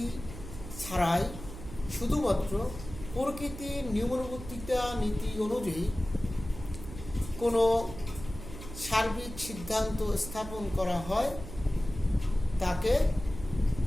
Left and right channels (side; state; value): right; noise; hum, 12 dB below the sound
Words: ছাড়াই শুধুমাত্র প্রকৃতির নিয়মানুবর্তিতা নীতি অনুযায়ী কোনো সার্বিক সিদ্ধান্ত স্থাপন করা হয় তাকে